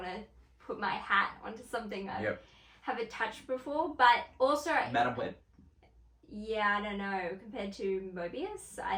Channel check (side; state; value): both; identical; correlation 1.00